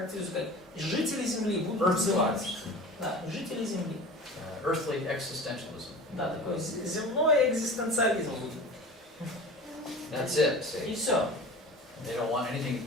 как жители земли будут взывать. Да, жители земли. Earthly existentialism. Да, такой земной экзистенциализм будет. That's it, И see. все. They don't want anything,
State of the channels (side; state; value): both; normal; correlation 0.37